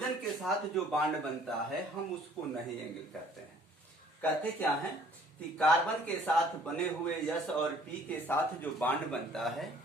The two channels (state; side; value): normal; both; correlation 0.57